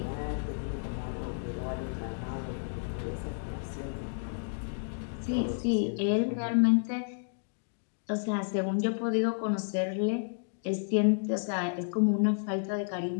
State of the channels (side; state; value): right; silent; digital silence